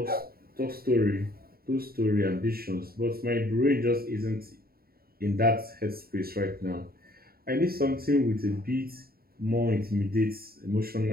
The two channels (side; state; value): left; late; 0.44 ms